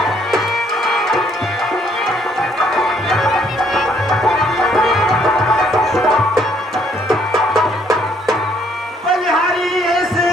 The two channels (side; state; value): both; normal; correlation 0.66